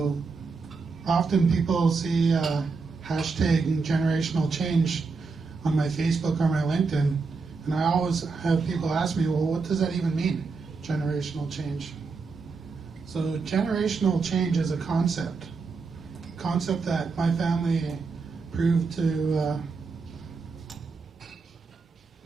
often people see hashtag generational change on my Facebook or my LinkedIn, and I always have people ask me, well, what does that even mean, generational change? So generational change is a concept that my family proved to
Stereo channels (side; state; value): left; quieter; 4.4 dB